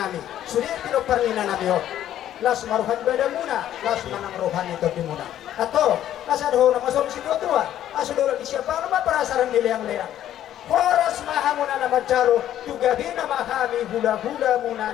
Sudah tidak pernah nami ho. Las maruhan beda muna, las manang rohan itu di muna. Atau las ada orang masuk situ tua. Asal di siapa nama perasaran dileang-leang. Horas mahamuna nama jaro juga bina mahami hula-hula muna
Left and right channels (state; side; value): quieter; right; 11.7 dB